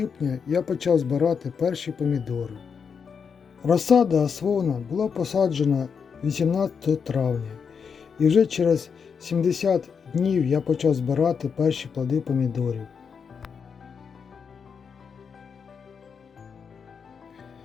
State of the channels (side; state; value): right; quieter; 6.3 dB